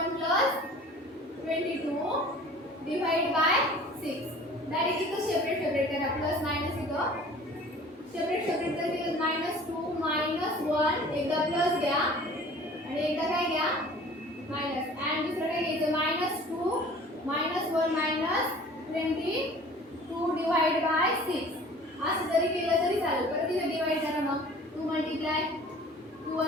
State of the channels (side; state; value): both; normal; correlation 0.46